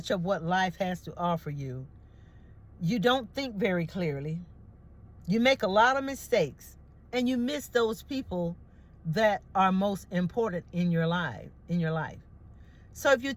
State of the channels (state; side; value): identical; both; correlation 1.00